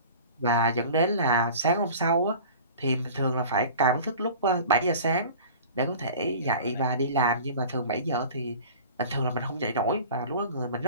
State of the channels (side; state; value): both; inverted; correlation -0.41